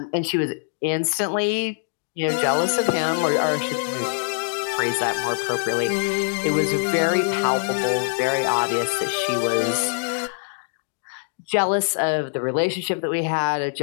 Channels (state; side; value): silent; right; 63 dB below the other